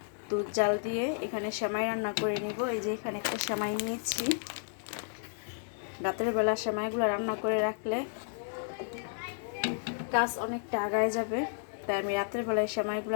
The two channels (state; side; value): silent; right; digital silence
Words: দুধ জাল দিয়ে এখানে সেমাই রান্না করে নিব। এই যে এখানে একটা সেমাই নিয়েছি। রাতের বেলা সেমাইগুলো রান্না করে রাখলে কাজ অনেকটা আগায় যাবে, তাই আমি রাতের বেলায় সেমাইগুলো